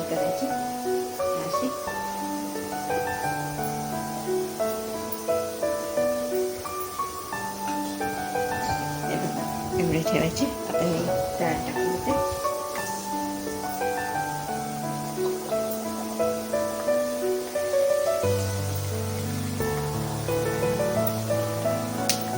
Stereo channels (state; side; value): identical; both; correlation 1.00